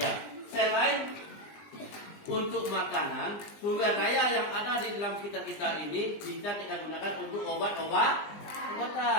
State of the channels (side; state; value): right; late; 20 ms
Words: selain untuk makanan, sumber daya yang ada di dalam sekitar kita ini bisa kita gunakan untuk obatan